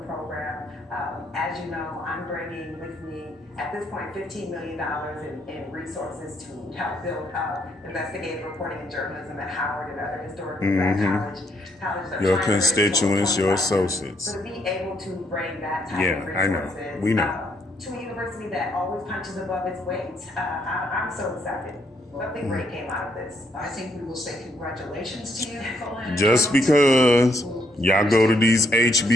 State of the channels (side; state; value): both; normal; correlation 0.73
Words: program. As you know, I'm bringing with me at this point $15 million in resources to help build investigative reporting and journalism at Howard and other historically Black colleges. Your constituents, your associates. So to be able to bring that type of resources, I know. We know. To a university that always punches above its weight, I'm so excited. Something great came out of this. I think we will say congratulations to you, Nicole Hannah Just Jones. because y'all go to these